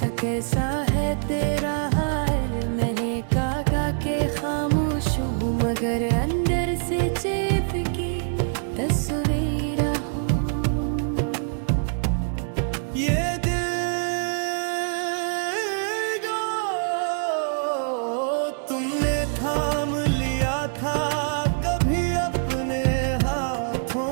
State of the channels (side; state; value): left; silent; digital silence